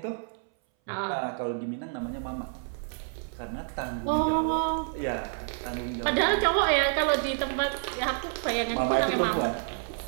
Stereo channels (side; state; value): left; silent; 59 dB below the other